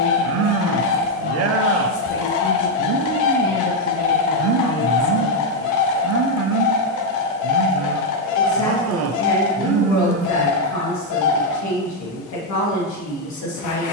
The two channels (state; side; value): normal; both; correlation 0.02